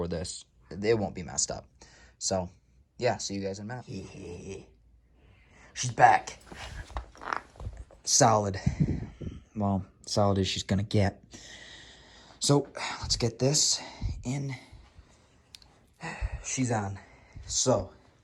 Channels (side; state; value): both; identical; correlation 1.00